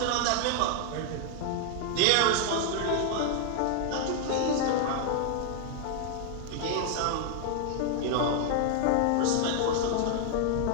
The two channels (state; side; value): different; both; correlation 0.00